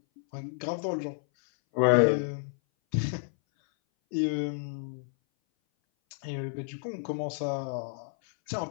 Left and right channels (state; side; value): silent; right; 58 dB below the other